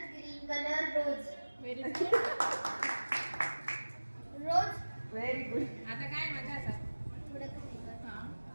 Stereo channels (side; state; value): both; inverted; correlation -1.00